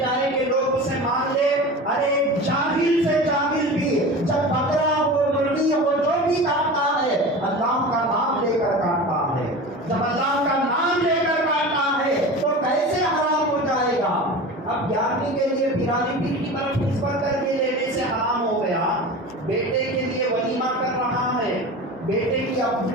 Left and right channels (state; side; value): normal; both; correlation 0.32